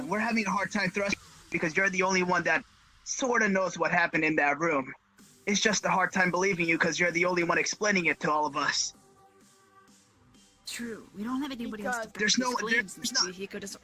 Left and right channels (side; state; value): both; identical; correlation 1.00